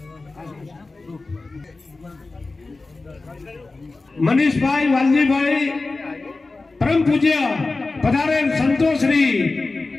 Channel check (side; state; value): right; quieter; 3.5 dB